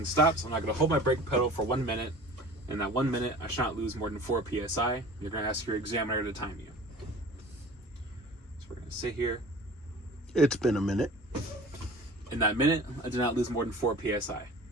stops, I'm not going to hold my brake pedal for 1 minute. In that 1 minute, I should not lose more than 4 PSI. You're going to ask your examiner to time you. So we're going to sit here. It's been a minute. In that minute, I did not lose more than 4 PSI.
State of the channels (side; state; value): both; normal; correlation 0.42